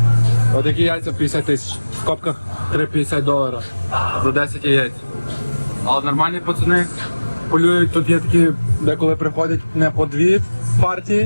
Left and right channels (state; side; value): inverted; both; correlation -1.00